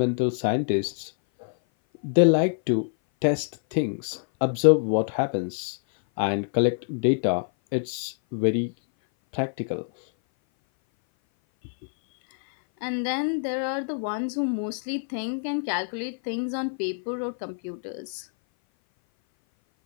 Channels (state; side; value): silent; right; 57 dB below the other